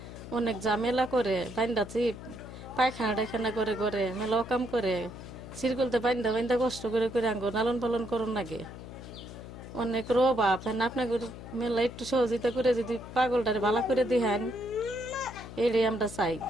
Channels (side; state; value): left; noise; hum, 13 dB below the sound